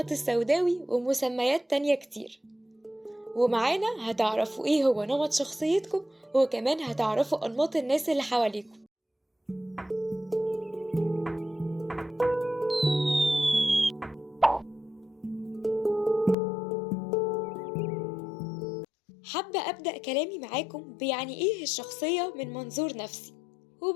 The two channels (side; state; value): right; drops out; at 16.4 s